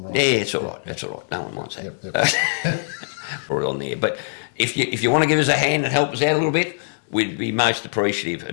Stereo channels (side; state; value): right; silent; digital silence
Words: right. Yeah, it's all right. That's all right. No one wants that. Yep. Put it on there. But if you want to give us a hand and help us out a little bit, we'd be most appreciative.